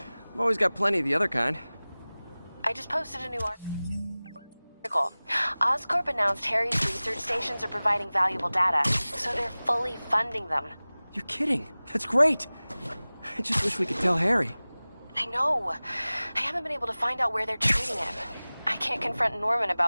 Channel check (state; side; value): inverted; both; correlation -0.99